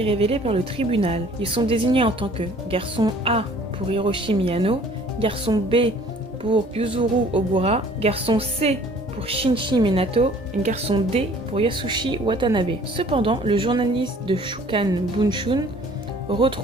révélée par le tribunal. Ils sont désignés en tant que garçon A pour Hiroshi Miyano, garçon B pour Yuzuru Ogura, garçon C pour Shinji Minato et garçon D pour Yasushi Watanabe. Cependant, le journaliste de Shukan Bunshun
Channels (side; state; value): both; normal; correlation 0.53